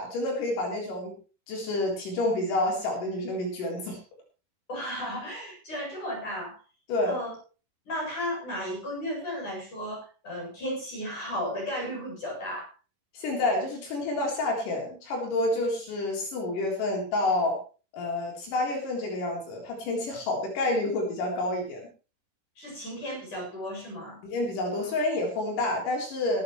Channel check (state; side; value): late; right; 10 ms